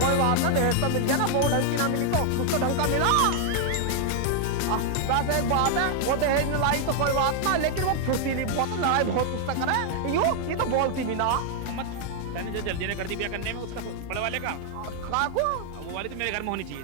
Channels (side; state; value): both; different; correlation 0.00